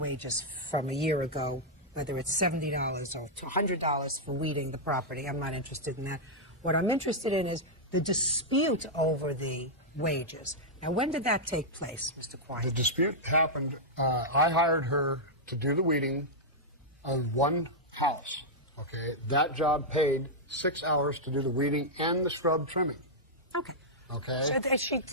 from a year ago, whether it's $70 or $100 for weeding the property. I'm not interested in that. What I'm interested in is the dispute over the wages. Now, when did that take place, Mr. Quine? The dispute happened, I hired her to do the weeding on one house, okay? That job paid 6 hours to do the weeding and the scrub trimming. Okay. Okay? So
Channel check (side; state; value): both; normal; correlation -0.06